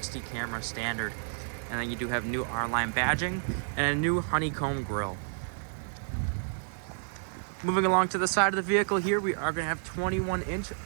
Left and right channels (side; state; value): left; silent; digital silence